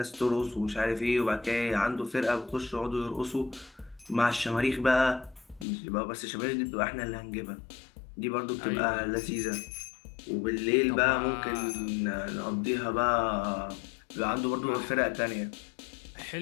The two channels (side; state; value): right; drops out; at 5.7 s